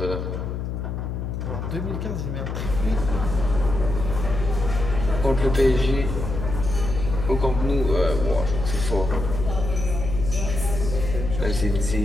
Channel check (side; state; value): left; noise; hum, 4 dB below the sound